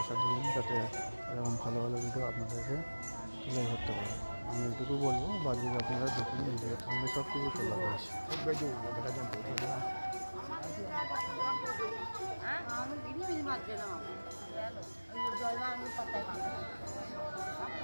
দিন, যাতে এরকম ভালো ভালো ভিডিও আপনাদেরকে তুলে ধরতে পারে। আমি এটুকু বলবো, বাকি আপনারা দেখুন ভিডিও, আমি সব কিছু তোলা রয়েছে। Bác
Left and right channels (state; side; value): inverted; both; correlation -1.00